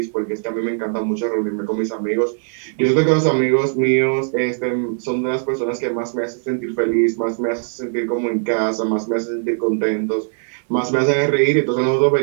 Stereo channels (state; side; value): silent; left; 66 dB below the other